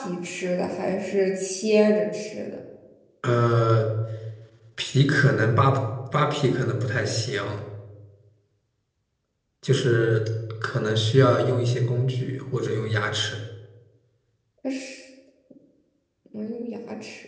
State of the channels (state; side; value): identical; both; correlation 1.00